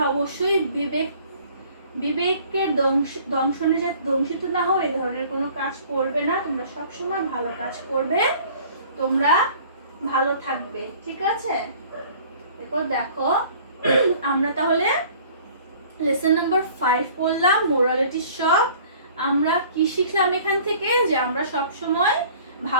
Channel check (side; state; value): both; inverted; correlation -0.51